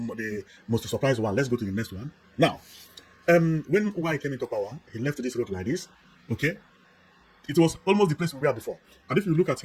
most surprised one. Let's go to the next one. Now, when Uwai came into power, he left this road like this. Okay, it was almost the place we were before. And if you look at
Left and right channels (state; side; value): identical; both; correlation 1.00